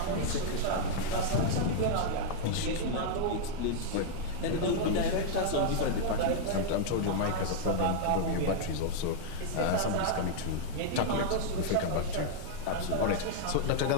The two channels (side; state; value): both; different; correlation -0.01